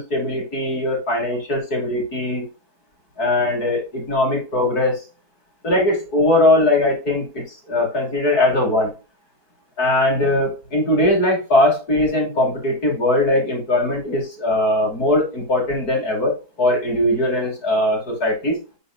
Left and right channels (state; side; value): late; right; 4.6 ms